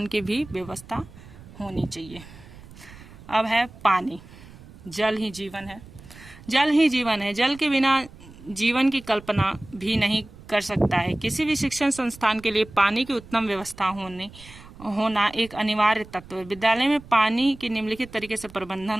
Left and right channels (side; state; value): right; noise; rumble, 19 dB below the sound